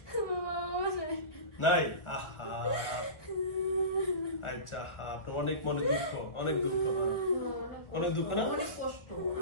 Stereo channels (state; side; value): late; right; 1.4 ms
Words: নাই? আহা, আচ্ছা, আপনার অনেক মনে দুঃখ, অনেক দুঃখ, অনেক দুঃখ না? অনেক কষ্ট